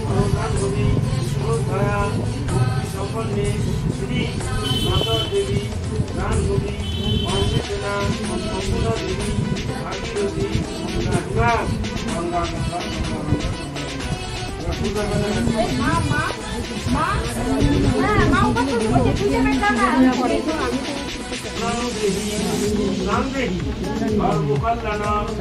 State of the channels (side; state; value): both; identical; correlation 1.00